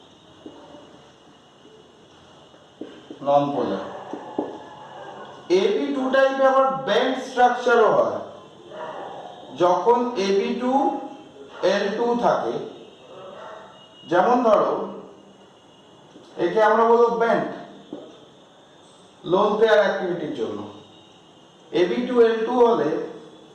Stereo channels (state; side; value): identical; both; correlation 1.00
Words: নন পোলার। AB2 টাইপে আবার বেন্ড স্ট্রাকচারও হয়, যখন AB2L2 থাকে। যেমন ধরো একে আমরা বলবো বেন্ড লোন পেয়ার অ্যাক্টিভিটির জন্য। AB2L2 হলে